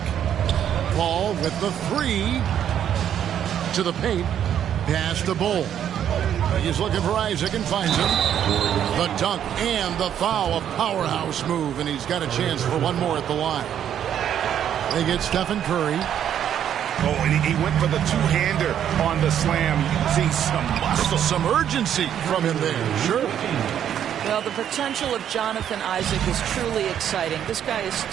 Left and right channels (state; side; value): quieter; left; 9.7 dB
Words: Ball with the 3 to the paint. Pass to Bull. He's looking for Isaac and finds him. The dunk and the foul. A powerhouse move, and he's got a chance for one more at the line. They get Stephen Curry. Oh, and he went for the two-hander on the slam, using some muscle. Some urgency from him there. Sure. Well, the potential of Jonathan Isaac is truly exciting. This guy is